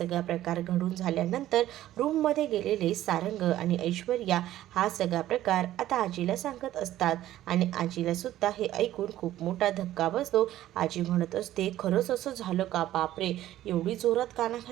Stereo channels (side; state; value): left; quieter; 13.7 dB